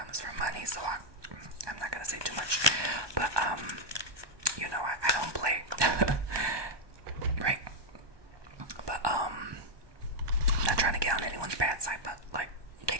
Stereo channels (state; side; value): late; left; 1.2 ms